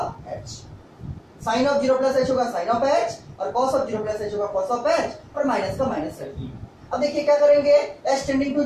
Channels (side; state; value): both; identical; correlation 1.00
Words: h. Sine of 0 plus h होगा साइन ऑफ एच, और कॉस ऑफ 0 प्लस एच होगा कॉस ऑफ एच, और माइनस का माइनस रख दिया। अब देखिए क्या करेंगे, एच टेंडिंग टू